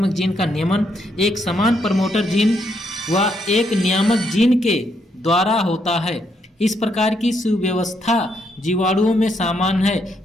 जीन का नियमन एक समान प्रमोटर जीन व एक नियामक जीन के द्वारा होता है। इस प्रकार की सुव्यवस्था जीवाणुओं में सामान्य है,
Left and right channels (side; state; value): both; normal; correlation 0.76